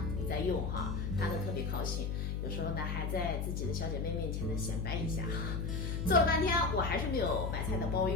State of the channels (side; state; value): left; noise; hum, 1 dB below the sound